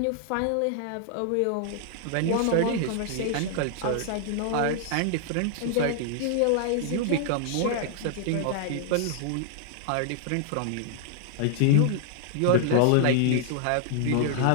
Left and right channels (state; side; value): different; both; correlation -0.01